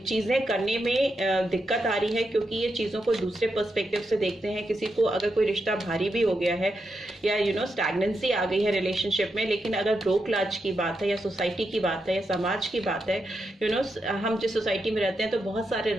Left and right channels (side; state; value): both; normal; correlation 0.85